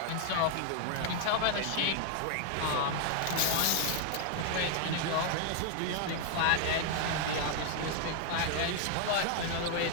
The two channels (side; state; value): both; different; correlation 0.00